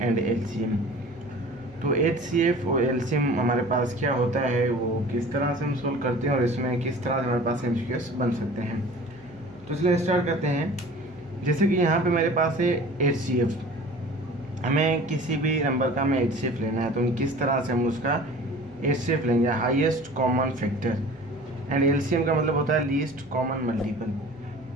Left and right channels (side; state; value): right; noise; hum, 25 dB below the sound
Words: LCM। तो HCF और LCM हमारे पास क्या होता है, वो किस तरह से हम सोल्व करते हैं और इसमें किस तरह से हमारे पास MCQs बन सकते हैं। तो इसलिए स्टार्ट करते हैं। जैसे कि यहाँ पे मेरे पास है HCF, हमें किसी भी नंबर का हमें HCF लेना है, तो हम किस तरह से हम उसका HCF लेंगे, highest common factor. And LCM का मतलब होता है लीस्ट कॉमन